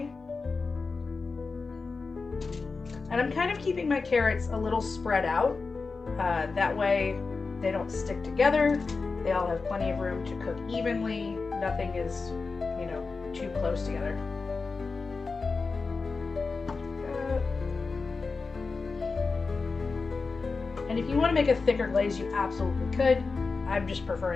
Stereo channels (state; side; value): quieter; right; 4.3 dB